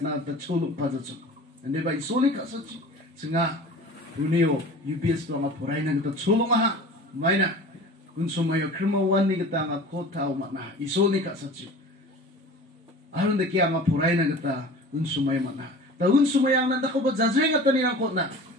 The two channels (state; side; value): normal; both; correlation 0.39